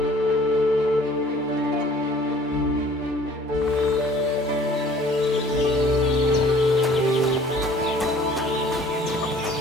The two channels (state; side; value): normal; both; correlation 0.53